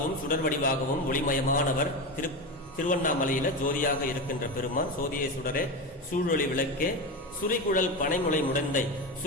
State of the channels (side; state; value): both; normal; correlation 0.20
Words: சுடர் வடிவாகவும் ஒளிமயமானவர். திருவண்ணாமலையில ஜோதியாக இருக்கின்ற பெருமான், சோதியை சுடரே சூழொளி விளக்கே சுரிகுழல் பனைமுளை முடந்தை,